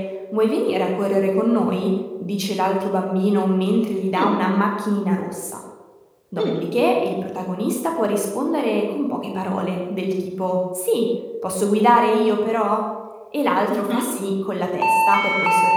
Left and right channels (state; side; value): identical; both; correlation 1.00